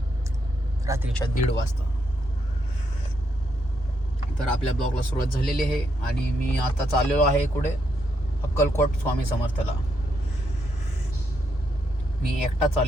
रात्रीच्या 1:30 वाजता. तर आपल्या ब्लॉगला सुरुवात झालेली आहे आणि मी आता चाललेलो आहे कुठे? अक्कलकोट स्वामी समर्थला. मी एकटा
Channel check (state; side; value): normal; both; correlation 0.78